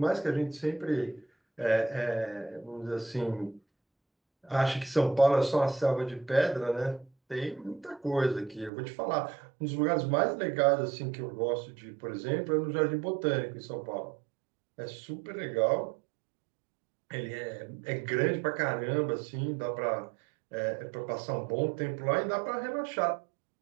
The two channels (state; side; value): drops out; left; at 8.7 s